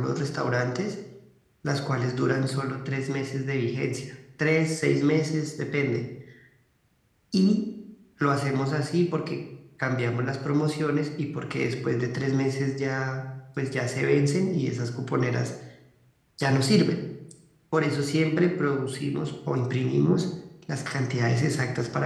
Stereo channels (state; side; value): identical; both; correlation 1.00